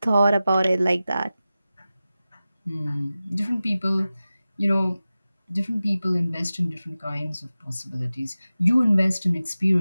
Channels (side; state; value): both; inverted; correlation -0.95